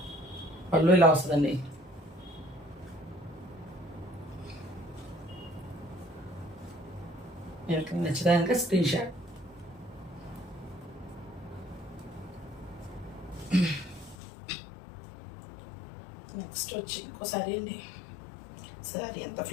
పళ్ళు ఇలా వస్తుందండి. మీకు నచ్చడానికి స్క్రీన్ షాట్. నెక్స్ట్ వచ్చి ఇంకోసారి అండి. సారీ ఎంత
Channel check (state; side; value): drops out; right; at 14.2 s